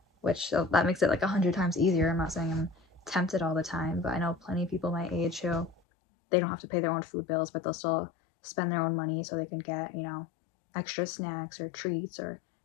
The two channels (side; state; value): right; drops out; at 5.8 s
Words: which that makes it like 100 times easier. I'm not saying I'm tempted all the time, but I know plenty of people my age who they don't have to pay their own food bills, but they'll still spend their own money so they can get, extra snacks or treats or